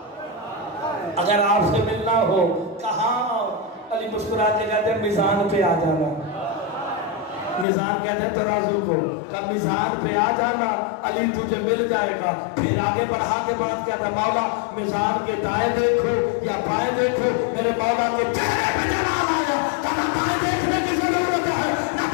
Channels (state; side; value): drops out; right; at 7.7 s